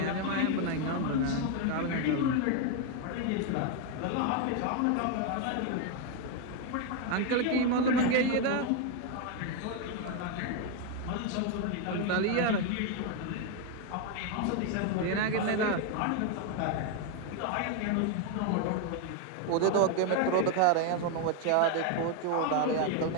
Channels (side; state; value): both; different; correlation 0.01